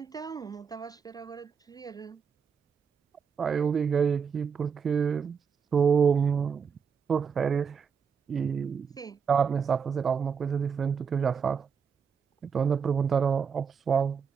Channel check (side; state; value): left; quieter; 6.5 dB